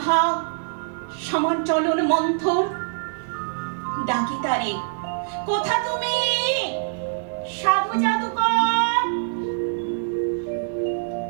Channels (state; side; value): silent; left; digital silence